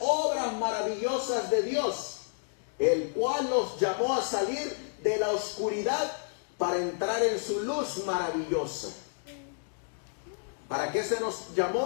obras maravillosas de Dios, el cual nos llamó a salir de la oscuridad para entrar en su luz maravillosa. ¿Para qué se nos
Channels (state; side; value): silent; right; digital silence